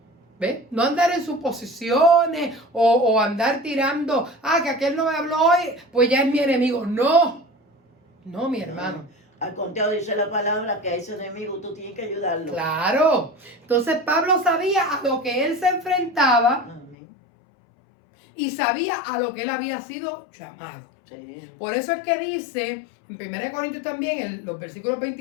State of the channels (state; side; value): drops out; right; at 16.9 s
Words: ¿Ves? No andar en suposiciones o andar tirando, que aquel no me habló hoy, pues ya es mi enemigo. No, no, mi hermano. Al contrario, dice la palabra que a ese enemigo tú tienes que ayudarlo. Claro. Entonces Pablo sabía a lo que él se enfrentaba. Amén. Y sabía a lo que él había sido llamado. Sí. Por eso es que dice, en 1 Corintios también, los versículos